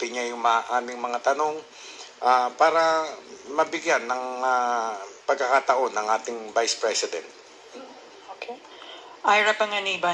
niya yung aming mga tanong para mabigyan ng pagkakataon ng ating Vice President. Okay. Ira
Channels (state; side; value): identical; both; correlation 1.00